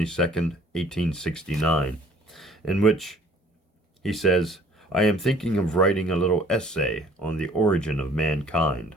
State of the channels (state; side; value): normal; both; correlation 0.55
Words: 1869, in which he says, "I am thinking of writing a little essay on the origin of mankind.